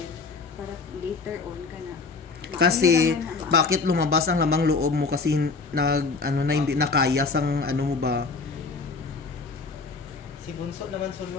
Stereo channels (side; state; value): right; quieter; 4.4 dB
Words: para later on ka na. Kasi, bakit lumabas ang lamang loob mo? Kasi, hindi nakaya sang ano mo ba? Si Bunso naman